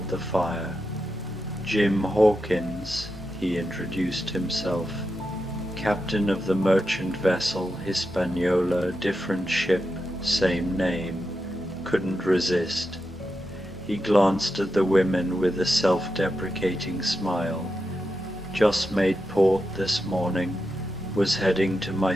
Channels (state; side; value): normal; both; correlation 0.88